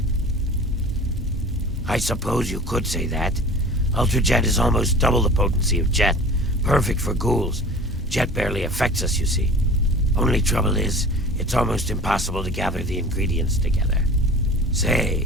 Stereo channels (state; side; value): normal; both; correlation 0.40